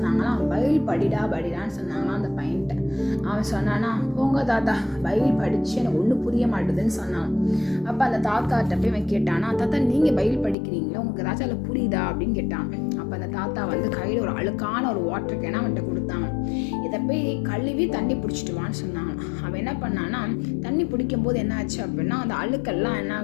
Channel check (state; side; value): drops out; right; at 10.6 s